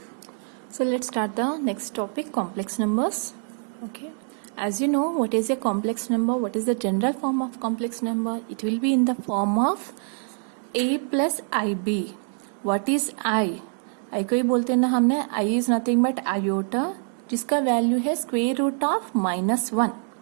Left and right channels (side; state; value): left; silent; 56 dB below the other